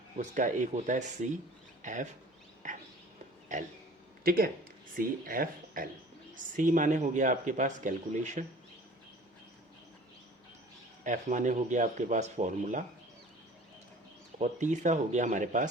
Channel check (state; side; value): normal; both; correlation 0.47